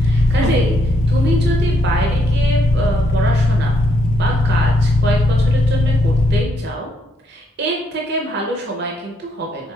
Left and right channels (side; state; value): both; normal; correlation 0.74